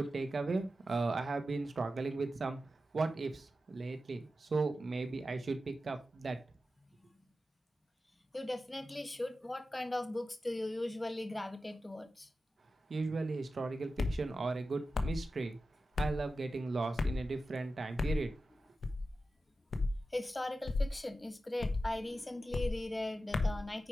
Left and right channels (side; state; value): both; normal; correlation 0.92